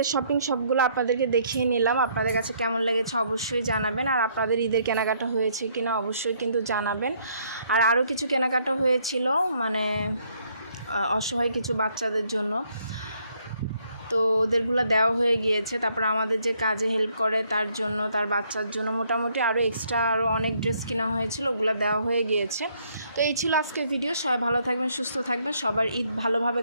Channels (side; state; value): both; inverted; correlation -0.68